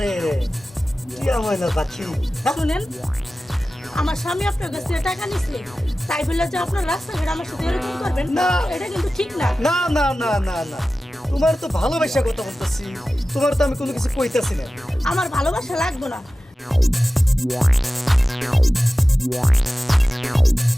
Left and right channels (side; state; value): both; normal; correlation 0.95